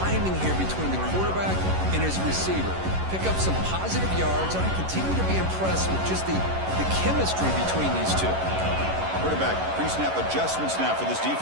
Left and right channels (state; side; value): late; left; 11 ms